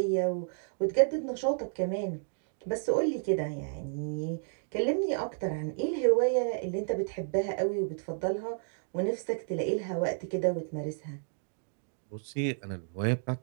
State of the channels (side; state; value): left; silent; digital silence